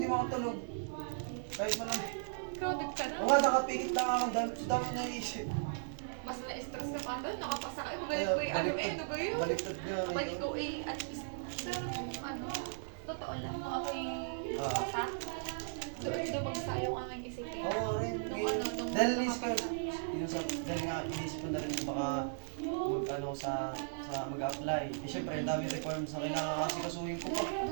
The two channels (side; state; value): left; silent; digital silence